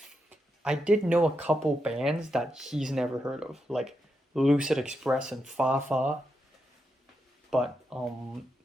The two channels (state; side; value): normal; both; correlation 0.85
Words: I did know a couple bands that he's never heard of, like Lucid Express and Fa Fa. But